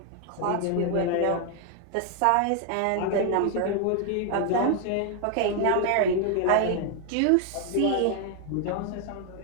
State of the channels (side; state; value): both; different; correlation 0.00